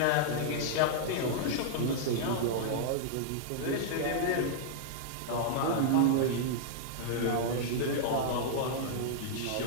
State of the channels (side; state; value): both; different; correlation -0.02